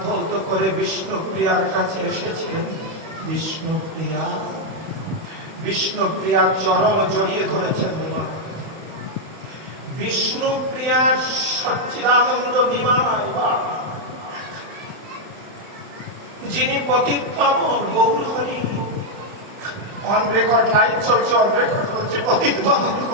ধৌত করে বিষ্ণুপ্রিয়ার কাছে এসেছিলেন। বিষ্ণুপ্রিয়া, বিষ্ণুপ্রিয়ার চরণ জড়িয়ে ধরেছেন। বিষ্ণুপ্রিয়ার সচ্চিদানন্দ বিমায়, যিনি পতিত পাবন গৌরহরি, অন রেকর্ড লাইভ চলছে, অন রেকর্ড হচ্ছে, পতিত পাবন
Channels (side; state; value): left; late; 31 ms